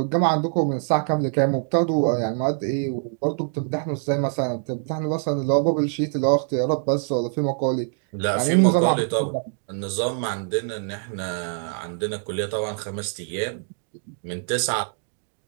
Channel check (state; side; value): silent; left; digital silence